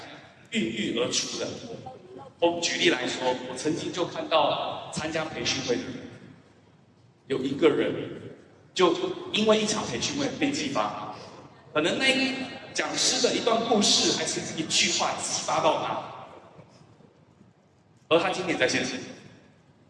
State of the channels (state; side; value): identical; both; correlation 1.00